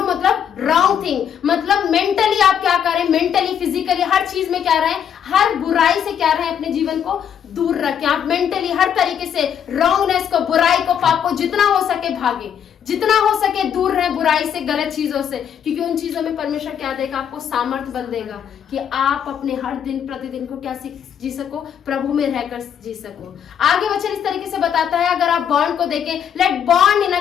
मतलब रॉन्ग थिंग, मतलब मेंटली आप क्या करें, मेंटली फिजिकली हर चीज में क्या रहें, हर बुराई से क्या रहें, अपने जीवन को दूर रखें। आप मेंटली हर तरीके से रॉन्गनेस को, बुराई को, पाप को जितना हो सके भागे, जितना हो सके दूर रहे बुराई से, गलत चीजों से, क्योंकि उन चीजों में परमेश्वर क्या देगा, आपको सामर्थ्य बल देगा कि आप अपने हर दिन प्रतिदिन को क्या जी सको, प्रभु में रहकर जी सको। आगे वचन इस तरीके से बताता है, अगर आप बॉन्ड को देखें, let bond in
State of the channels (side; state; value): right; quieter; 8.6 dB